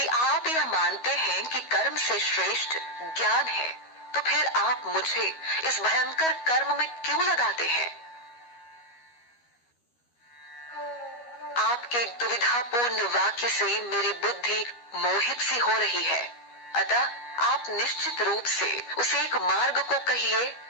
आप यह मानते हैं कि कर्म से श्रेष्ठ ज्ञान है, तो फिर आप मुझे इस भयंकर कर्म में क्यों लगाते हैं? आपके दुविधापूर्ण वाक्य से मेरी बुद्धि मोहित सी हो रही है, अतः आप निश्चित रूप से उस एक मार्ग को कहिए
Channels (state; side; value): late; right; 12 ms